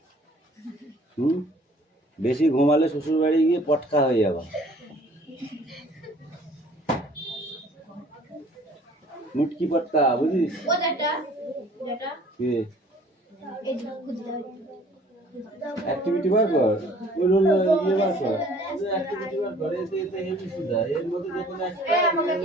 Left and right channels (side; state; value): both; normal; correlation 0.54